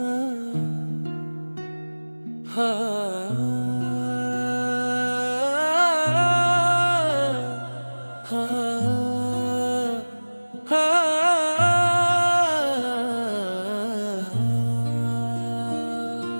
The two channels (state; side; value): inverted; both; correlation -1.00